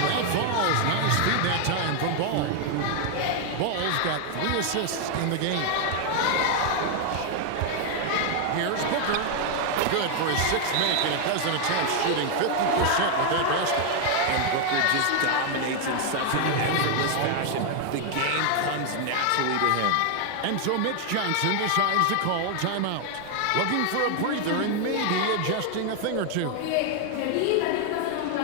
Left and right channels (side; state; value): both; different; correlation 0.00